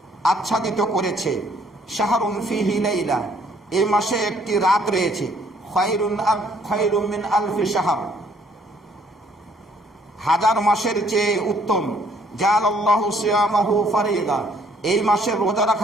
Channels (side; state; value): both; normal; correlation 0.64